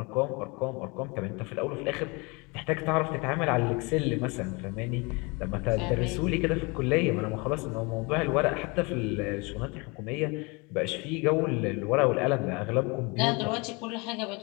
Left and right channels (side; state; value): right; quieter; 28.4 dB